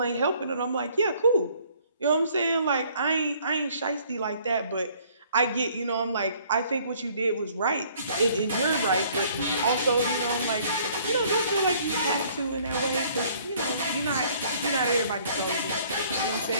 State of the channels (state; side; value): inverted; both; correlation -0.59